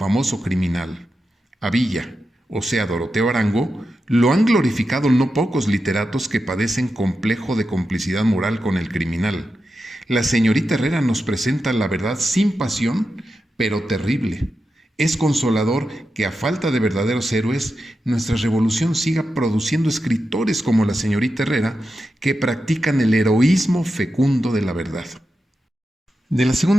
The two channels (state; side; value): normal; both; correlation 0.89